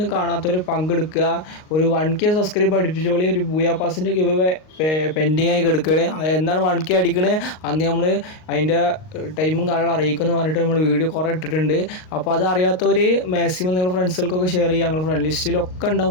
കാണാത്തവർ പങ്കെടുക്കുക. ഒരു 1K സബ്സ്ക്രൈബ് അടുപ്പിച്ചോളി. ഒരു ബൂയാ പാസിൻ്റെ ഗിവ് പെൻഡിങ് ആയി കിടക്കുകയാണ്. എന്നാണ് 1K അടിക്കണേ അന്ന് നമ്മൾ അതിൻ്റെ ടൈമും കാര്യങ്ങളും അറിയിക്കുമെന്ന് പറഞ്ഞിട്ട് നമ്മൾ വീഡിയോ കുറേ ഇട്ടിട്ടുണ്ട്. അപ്പോൾ അത് അറിയാത്തവർ മാക്സിമം നിങ്ങൾ ഫ്രണ്ട്സുകൾക്കൊക്കെ ഷെയർ ചെയ്യുക. ഞങ്ങൾ ഫ്രണ്ട് ലിസ്റ്റിലൊക്കെ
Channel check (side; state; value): right; late; 38 ms